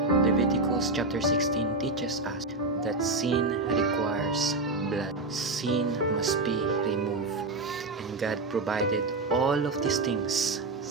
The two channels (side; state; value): left; quieter; 3.1 dB